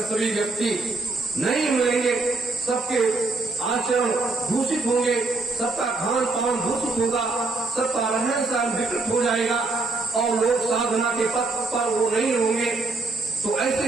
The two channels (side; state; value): left; quieter; 3.6 dB